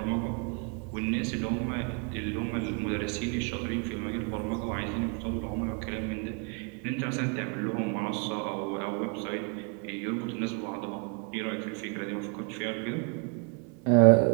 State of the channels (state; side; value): quieter; left; 37.2 dB